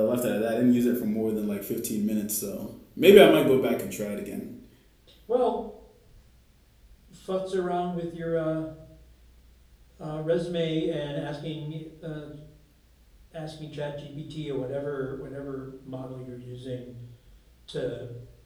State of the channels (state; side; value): identical; both; correlation 1.00